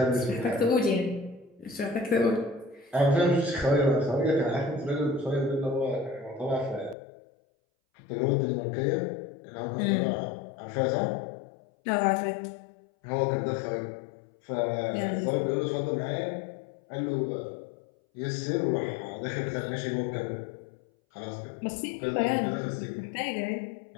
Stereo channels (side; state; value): right; drops out; at 7.0 s